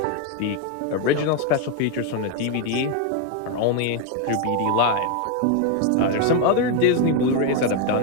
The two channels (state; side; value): different; both; correlation 0.01